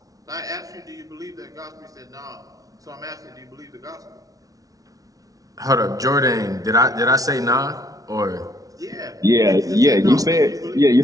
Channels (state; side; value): late; left; 0.18 ms